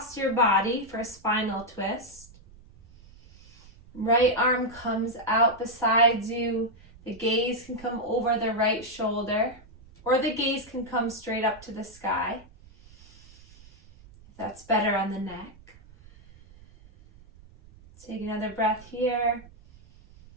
your body for a spinal twist. Right arm comes out beside you. The gaze can come over the right shoulder, or the gaze can come straight up to the sky, if that's better on the neck. Take another breath here.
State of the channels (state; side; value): noise; right; rumble, 23 dB below the sound